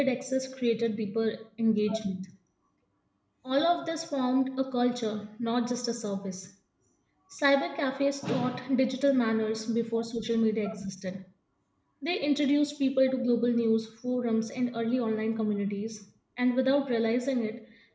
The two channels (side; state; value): both; identical; correlation 1.00